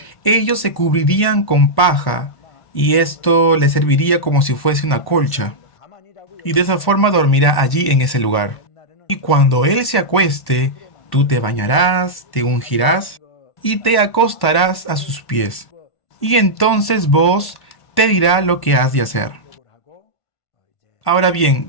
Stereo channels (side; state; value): right; late; 1.1 ms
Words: ellos se cubrirían con paja, y esto les serviría como si fuese una colcha. y de esa forma dormirá allí en ese lugar. Y cuando él se acueste, tú te bañarás, te ungirás y te acostarás a sus pies. Y entonces vos te dirá lo que has de hacer. Ahora bien,